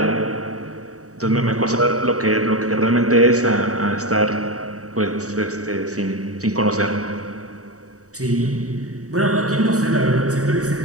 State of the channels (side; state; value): left; late; 0.66 ms